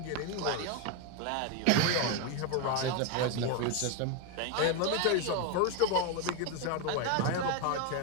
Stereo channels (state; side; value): different; both; correlation 0.02